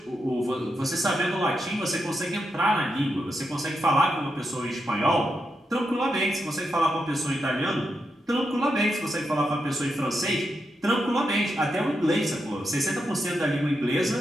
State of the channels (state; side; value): normal; both; correlation 0.85